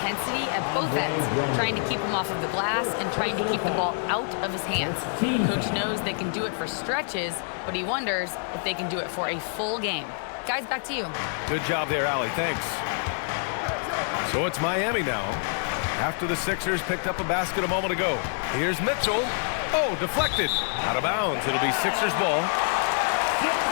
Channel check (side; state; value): right; silent; digital silence